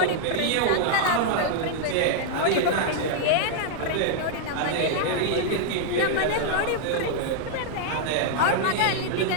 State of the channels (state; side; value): different; both; correlation -0.01